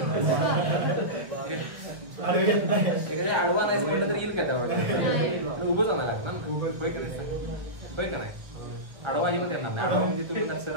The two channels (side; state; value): left; late; 1.2 ms